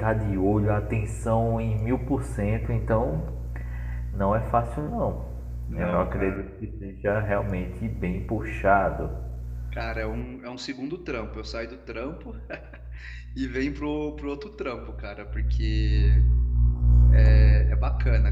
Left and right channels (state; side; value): identical; both; correlation 1.00